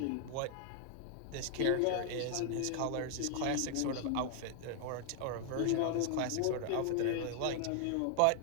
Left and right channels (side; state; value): both; different; correlation 0.00